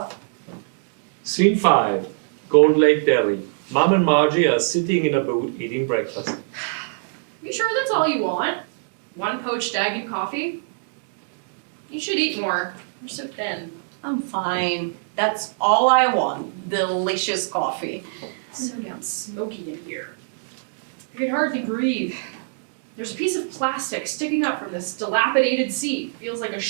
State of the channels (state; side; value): silent; left; digital silence